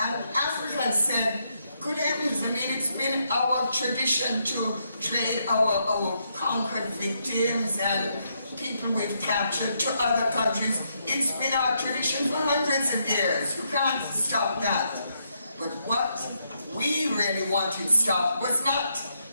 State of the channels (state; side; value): inverted; both; correlation -0.79